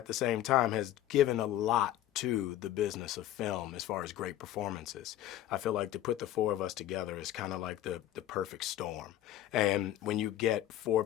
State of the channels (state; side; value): quieter; right; 12.9 dB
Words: the same time has given a lot to the business of film as far as great performances. I feel like to put the four of us together is kind of like the perfect storm. And when you get four